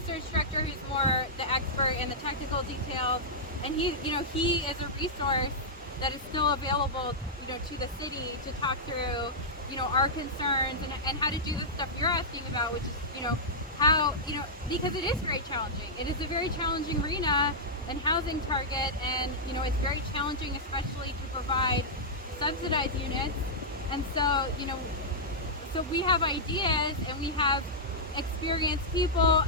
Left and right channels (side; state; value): both; normal; correlation -0.10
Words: director who's more the expert in the technical details, and he is a resource that is still available to the city to talk through our concerns and how to do the stuff you're asking about, which is how because it is very challenging. It is a very challenging arena and housing target, and it's very challenging, especially to provide subsidized units. And so so we have ideas and we have experienced people.